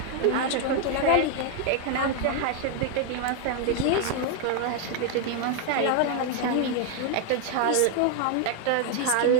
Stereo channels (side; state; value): both; different; correlation 0.01